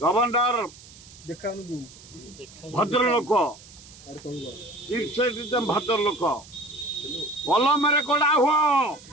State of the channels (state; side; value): noise; right; hiss, 21 dB below the sound